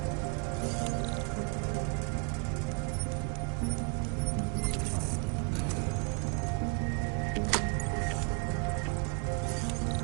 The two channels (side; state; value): left; quieter; 33.3 dB